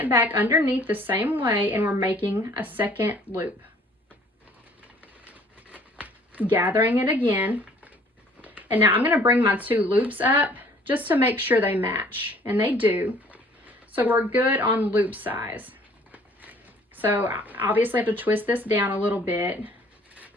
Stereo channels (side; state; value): both; normal; correlation 0.55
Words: back underneath the same way, and we're making a second loop. Gathering it again. And now I'm going to bring my 2 loops up just to make sure they match, and they do. So we're good on loop size. So obviously I have to twist this down a little bit